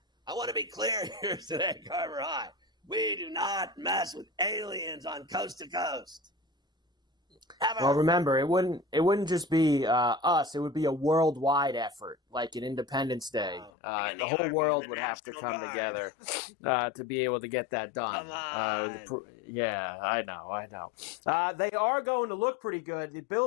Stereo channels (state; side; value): drops out; right; at 13.7 s